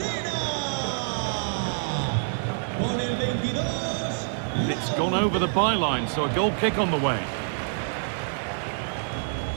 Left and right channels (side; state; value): left; silent; 60 dB below the other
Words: It's gone over the byline, so a goal kick on the way.